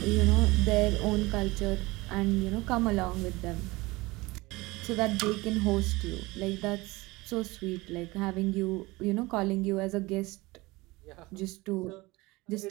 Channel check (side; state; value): left; quieter; 21.9 dB